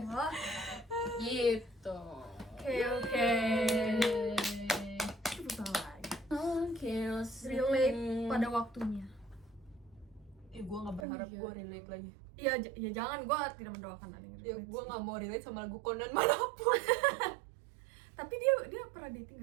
Wah, gitu. Oke. Susah lagi. Oke, Relate pada waktunya. Gue nggak berharap iya. gue relate lagi. Iya, ya jangan, gue tidak mendoakan ada yang Ya relate gue sih. nggak mau relate sama lagu Conan manapun. Tapi dia pernah dating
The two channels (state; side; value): drops out; left; at 11.1 s